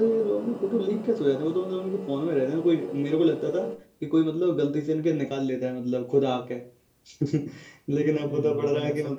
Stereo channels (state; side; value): identical; both; correlation 1.00